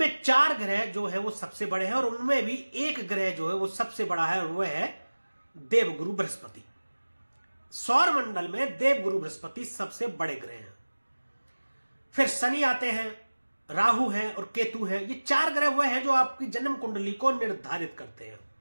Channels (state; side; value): inverted; both; correlation -1.00